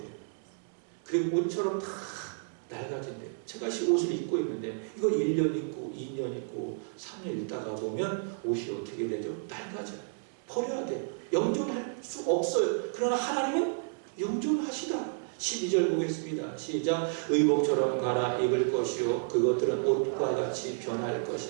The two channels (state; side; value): silent; left; 57 dB below the other